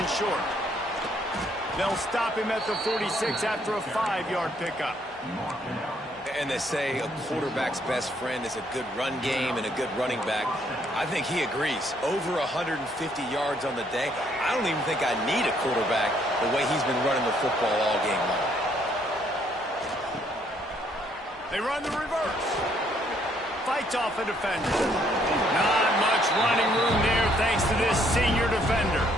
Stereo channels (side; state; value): both; normal; correlation 0.68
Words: short. They'll stop him at the 46 after a 5-yard pickup. And they say a quarterback's best friend is a good run game and a good running back. I think he agrees. Over 150 yards on the day. I don't even think I need a quarterback the way he's been running the football all game long. They run the reverse. Fights off a defender. Not much running room there thanks to this senior defender.